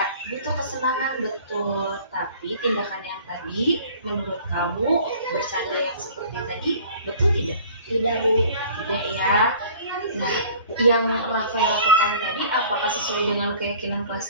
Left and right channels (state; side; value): inverted; both; correlation -0.49